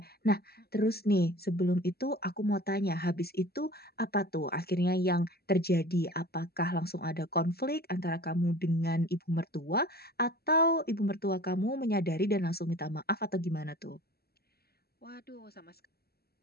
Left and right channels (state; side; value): late; right; 0.46 ms